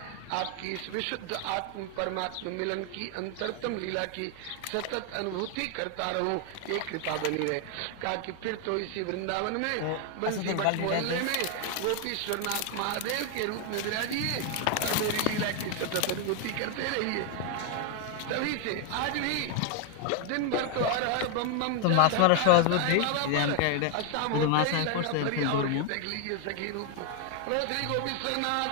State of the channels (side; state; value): both; different; correlation 0.01